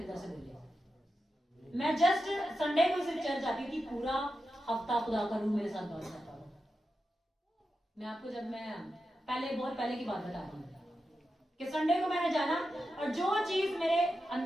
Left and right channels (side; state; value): both; normal; correlation 0.90